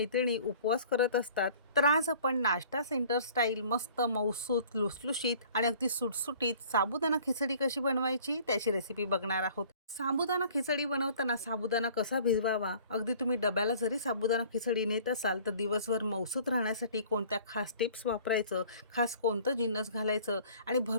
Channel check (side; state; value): both; inverted; correlation -0.51